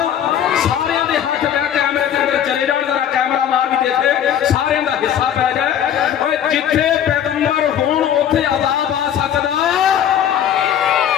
सारियां दे हाथ लै कैमरे दे अंदर चले जाण, जरा कैमरा मार भी देखे, सारियां दा हिस्सा पै जाए। ओए जिथे पैगंबर होण उत्थे अजाब आ सकदा।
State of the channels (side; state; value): right; quieter; 9.7 dB